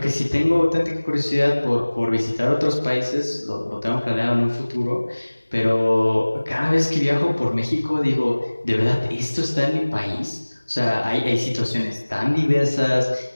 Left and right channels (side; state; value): both; inverted; correlation -1.00